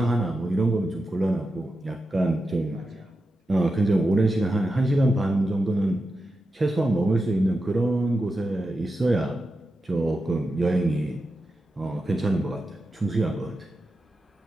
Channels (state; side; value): normal; both; correlation 0.90